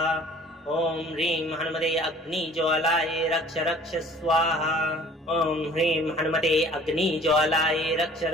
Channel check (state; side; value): normal; both; correlation 0.50